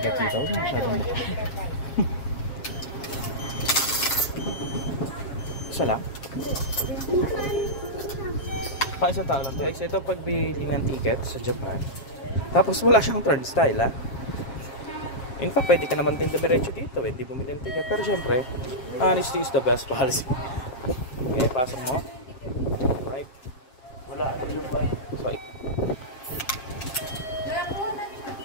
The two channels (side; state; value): right; late; 7.4 ms